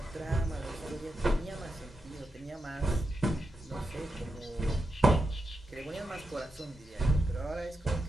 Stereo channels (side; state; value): both; normal; correlation 0.87